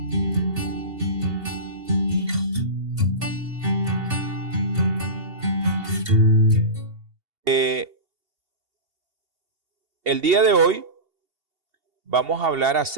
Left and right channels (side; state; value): left; late; 2.7 ms